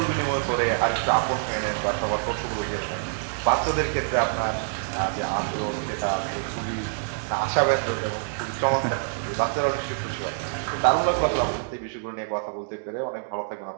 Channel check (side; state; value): left; silent; 61 dB below the other